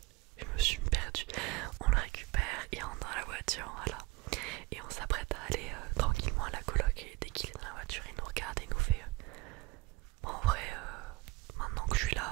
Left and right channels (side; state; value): left; quieter; 22.1 dB